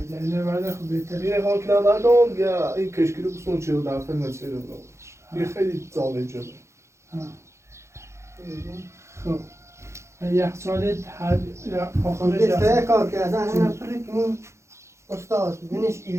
دلیل بعد خب بهتره یه خان کلم ندارم یا این کشکی رو بسون چه رو در فیلم چه رو یه خیلی زاله جده خب یخچال هر آخرش یه سه کار که از همه پرکنیم استاد بینش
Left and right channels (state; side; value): late; left; 0.14 ms